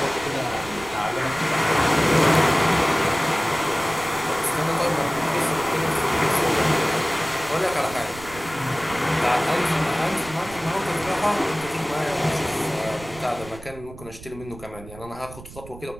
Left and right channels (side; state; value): right; noise; rumble, 16 dB below the sound